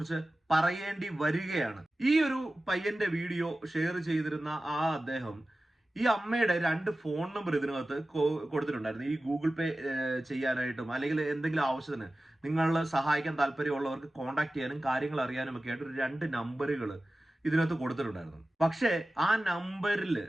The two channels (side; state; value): both; normal; correlation 0.95